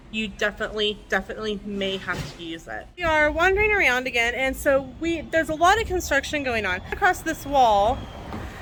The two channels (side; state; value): both; identical; correlation 1.00